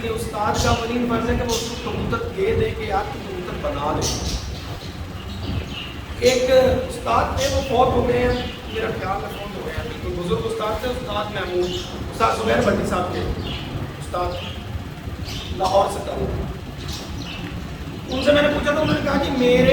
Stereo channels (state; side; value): identical; both; correlation 1.00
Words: یہ استاد کا اولین فرض ہے کہ وہ اس کو کبوتر دے دے کے آپ کو کبوتر بنا دے. ایک استاد تھے وہ فوت ہو گئے ہیں, میرا خیال میں فوت ہو گئے ہیں, بالکل بزرگ استاد تھے, استاد محمود, استاد زبیر بھٹی صاحب کے استاد, لاہور سے تھا. ان سے میں نے پوچھا تو انہوں نے کہا کہ